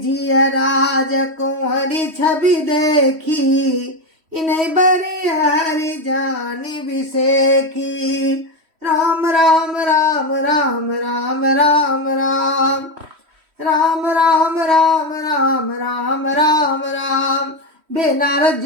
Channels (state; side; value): late; left; 3.1 ms